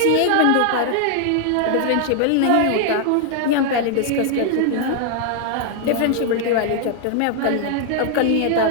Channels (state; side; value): different; both; correlation 0.00